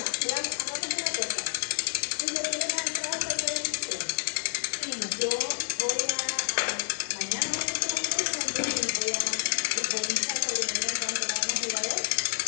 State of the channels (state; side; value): silent; right; 58 dB below the other